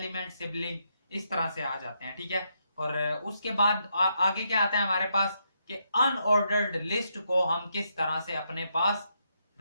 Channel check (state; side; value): inverted; both; correlation -0.79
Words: sibling, इस तरह से आ जाते हैं। ठीक है, और उसके बाद आगे क्या आता है हमारे पास कि अनऑर्डर्ड लिस्ट को हम किस तरह से अपने पास